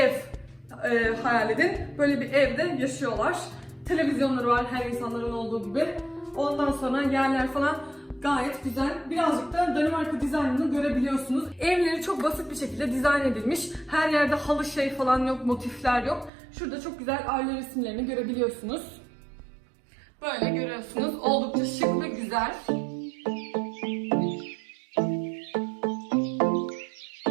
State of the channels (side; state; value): left; drops out; at 16.3 s